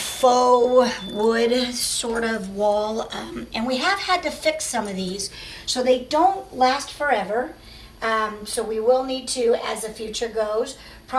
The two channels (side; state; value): both; identical; correlation 1.00